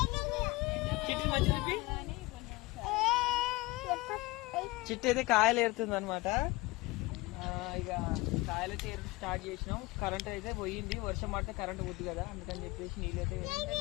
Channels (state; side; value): quieter; right; 22.0 dB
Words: చిట్టి మంచి చిట్టి అయితే కాయలు ఏరుతుంది అనమాట. ఇక కాయలు అయితే స్టార్ట్ చేసినాం. కరెంట్ అయితే పోయింది. వర్షం పడితే కరెంట్ పోద్ది కదా, అందుకని చెప్పేసి నీళ్ళైతే